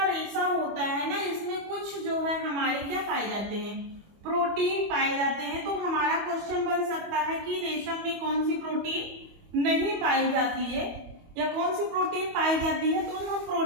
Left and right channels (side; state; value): left; late; 25 ms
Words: रेशा होता है ना, इसमें कुछ जो है हमारे क्या पाए जाते हैं, प्रोटीन पाए जाते हैं। तो हमारा क्वेश्चन बन सकता है कि रेशम में कौन सी प्रोटीन नहीं पाई जाती है या कौन सी प्रोटीन पाई जाती है, तो हम